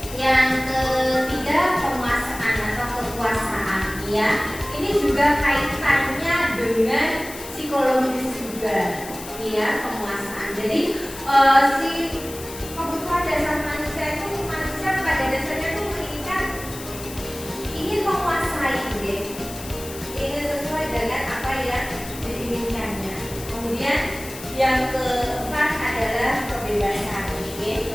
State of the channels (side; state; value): left; noise; hiss, 13 dB below the sound